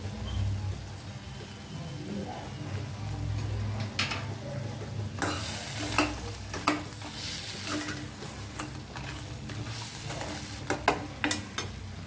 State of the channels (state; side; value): identical; both; correlation 1.00